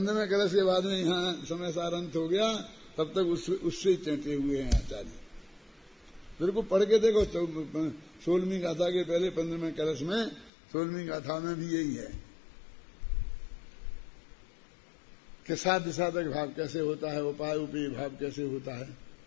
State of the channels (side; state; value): right; drops out; at 10.5 s